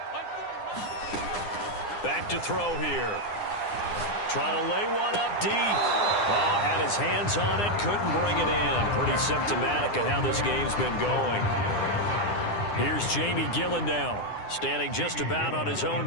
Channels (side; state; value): right; late; 9.8 ms